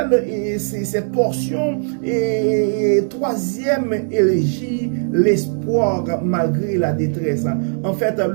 cette portion troisième élégie, l'espoir malgré la détresse. En fait,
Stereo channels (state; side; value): silent; left; 65 dB below the other